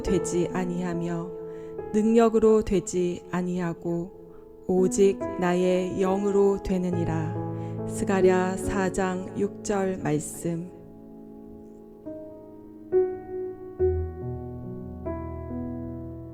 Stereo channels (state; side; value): identical; both; correlation 1.00